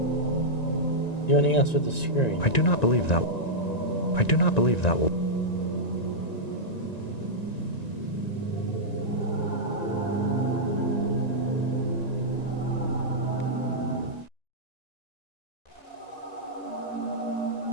Do anything else with the screen? I do not believe that. I do not believe that will...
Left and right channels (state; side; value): late; right; 1.9 ms